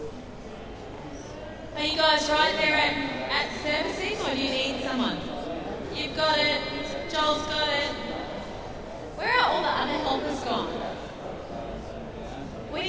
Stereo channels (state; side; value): identical; both; correlation 1.00